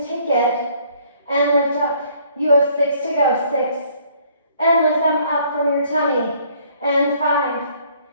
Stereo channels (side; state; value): both; inverted; correlation -0.62